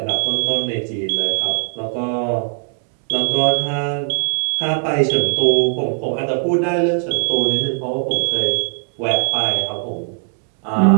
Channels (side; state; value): left; silent; 58 dB below the other